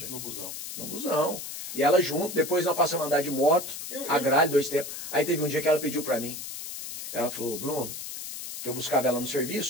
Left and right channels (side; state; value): left; noise; hiss, 8 dB below the sound